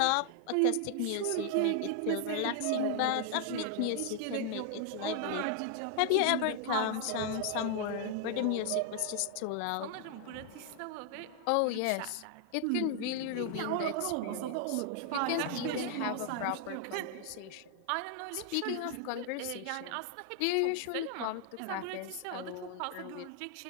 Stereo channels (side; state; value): both; different; correlation 0.00